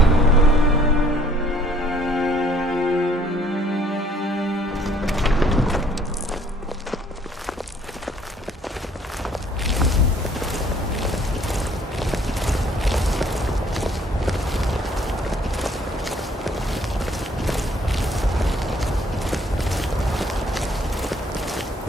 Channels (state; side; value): normal; both; correlation 0.61